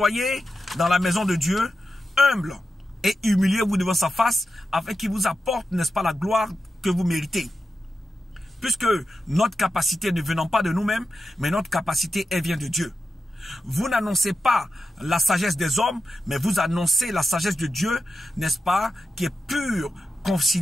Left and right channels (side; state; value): both; normal; correlation 0.89